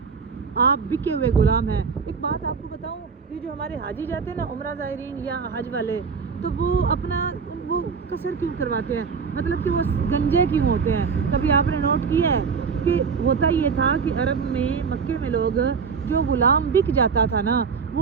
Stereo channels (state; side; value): quieter; left; 5.7 dB